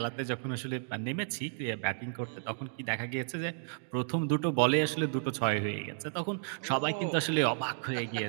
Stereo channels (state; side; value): silent; left; digital silence